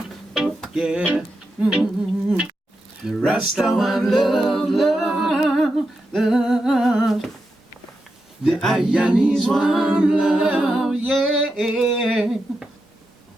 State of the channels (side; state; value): both; normal; correlation 0.87